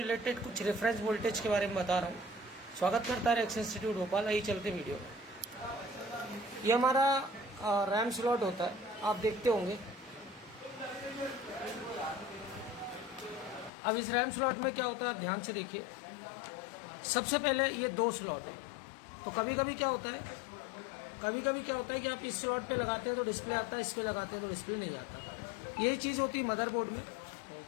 कुछ reference voltage के बारे में बता रहा हूँ। स्वागत करता है एक्स इंस्टीट्यूट भोपाल। आइए चलते वीडियो में। ये हमारा रैम स्लॉट होता है, आप देखते होंगे। अब इस रैम स्लॉट में क्या होता है, आप ध्यान से देखिए। सबसे पहले ये दो स्लॉट है, तो कभी कभी क्या होता है कि आप इस स्लॉट पे लगाते हैं तो डिस्प्ले आता है, इस पे लगाते हैं तो डिस्प्ले नहीं आता। यही चीज़ होती है मदरबोर्ड में।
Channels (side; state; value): right; drops out; at 13.7 s